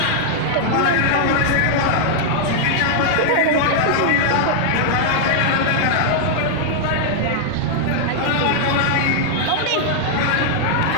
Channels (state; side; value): different; both; correlation -0.01